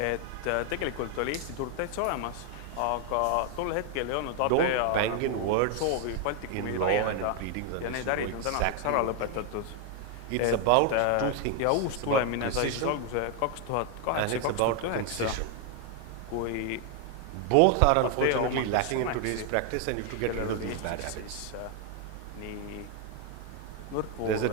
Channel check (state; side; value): different; both; correlation 0.00